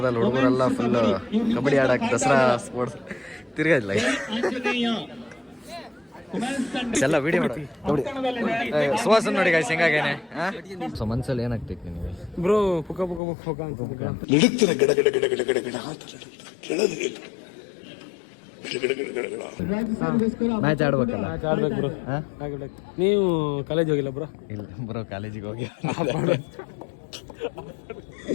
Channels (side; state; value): right; drops out; at 13.2 s